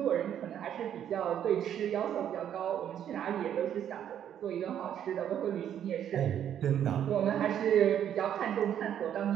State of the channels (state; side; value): quieter; left; 9.8 dB